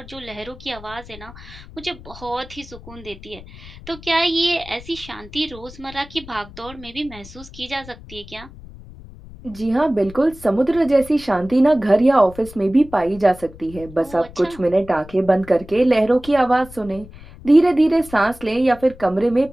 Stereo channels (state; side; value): noise; left; rumble, 18 dB below the sound